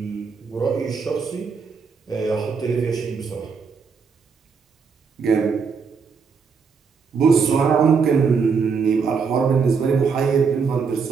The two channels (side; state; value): left; quieter; 5.6 dB